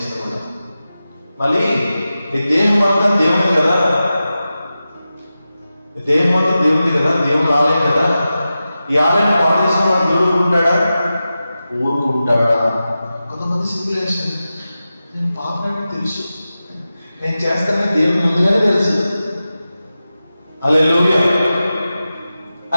మళ్ళీ ఈ దేహం అంతా దేవుని కదా, ఈ దేహం అంతా దేవుంది కదా, దేవుని ఆలయం కదా. ఈ ఆలయం పాడు చేసిన వాడు ఊరుకుంటాడా? ఊరుకుంటాడా? కొంతమంది సింపులేషన్, నేను పాపనని తెలుసు, నేను చేస్తానని దేవుని ముందుగానే తెలుసు. హల్లెలూయా.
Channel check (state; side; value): inverted; both; correlation -0.93